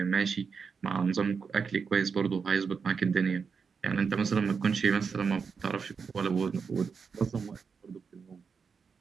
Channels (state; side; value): quieter; left; 5.7 dB